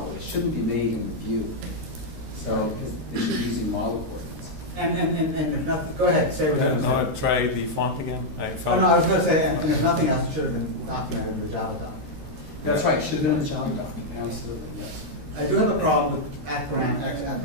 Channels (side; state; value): left; late; 13 ms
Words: They shouldn't be made in the view. So, because they should be using model coordinates. And if not, go ahead, say what you want to Now I say. try the font again. I Oh, found no, I was going to say, and if nothing else, it should have been documented in the Java doc. That's right, should have been in the Java document, absolutely, yes. I do have a problem with @param X,